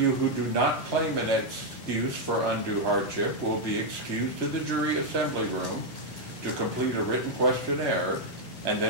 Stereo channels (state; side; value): normal; both; correlation -0.01